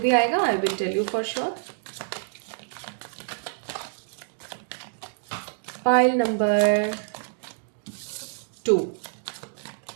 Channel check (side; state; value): left; silent; digital silence